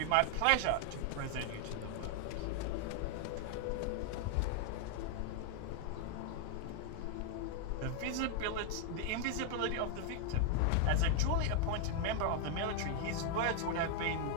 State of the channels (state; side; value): different; both; correlation 0.00